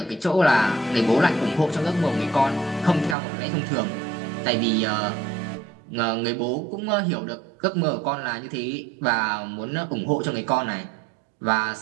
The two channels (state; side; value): drops out; left; at 3.2 s